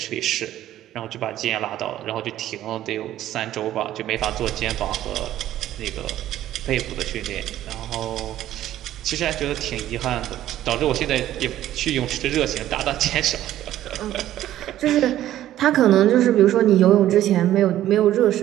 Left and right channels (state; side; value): quieter; left; 13.0 dB